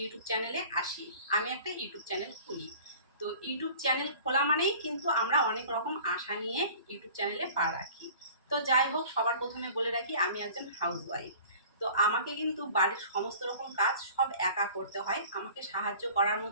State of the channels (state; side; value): inverted; both; correlation -0.46